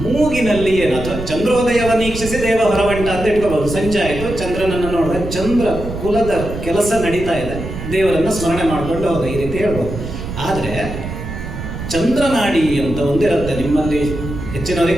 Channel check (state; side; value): noise; right; rumble, 8 dB below the sound